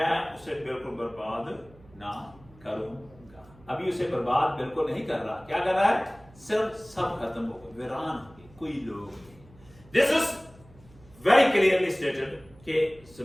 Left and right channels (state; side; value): noise; right; hum, 25 dB below the sound